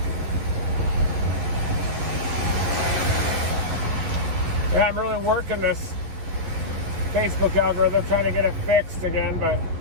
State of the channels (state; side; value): late; left; 11 ms